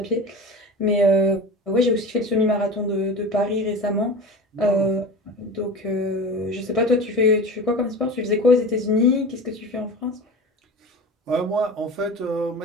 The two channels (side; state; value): both; normal; correlation 0.32